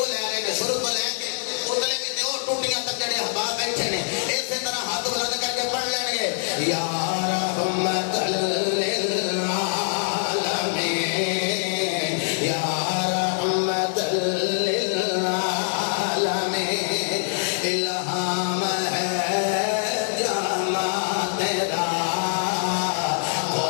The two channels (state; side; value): silent; right; digital silence